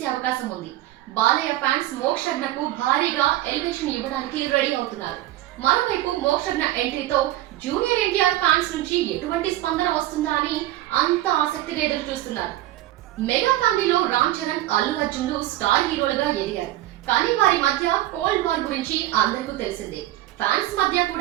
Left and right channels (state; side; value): quieter; left; 15.1 dB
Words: అవకాశం ఉంది. బాలయ్య ఫ్యాన్స్ మోక్షజ్ఞకు భారీగా ఎలివేషన్ ఇవ్వడానికి రెడీ అవుతున్నారు. మరోవైపు మోక్షజ్ఞ ఎంట్రీతో జూనియర్ ఎన్టీఆర్ ఫ్యాన్స్ నుంచి ఎటువంటి స్పందన వస్తుందా అని అంత ఆసక్తిగా ఎదురు చూస్తున్నారు. మెగా ఫ్యామిలీలో రామ్ చరణ్, అల్లు అర్జున్లు స్టార్ హీరోలుగా ఎదిగారు. కానీ వారి మధ్య కోల్డ్ వార్ గురించి అందరికీ తెలిసిందే. ఫ్యాన్స్ మధ్య